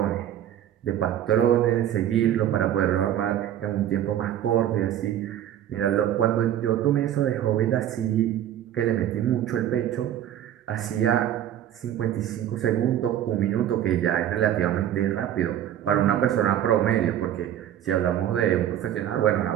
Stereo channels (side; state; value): left; quieter; 11.2 dB